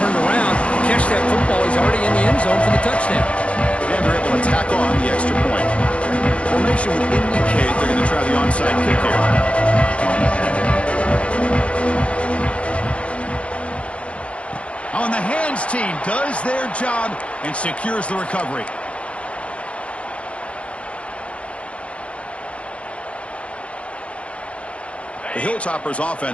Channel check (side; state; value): right; late; 0.061 ms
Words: around, catch that football. He's already in the end zone for the touchdown. And they're able to tackle on the extra point. Formation would indicate they're going to try the onside kick here. On the hands team does their job and secures the recovery. The Hilltoppers